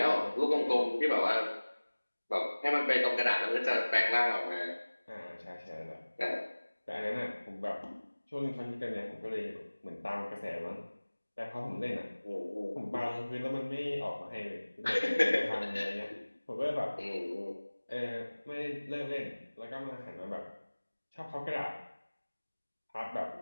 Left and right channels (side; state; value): both; inverted; correlation -1.00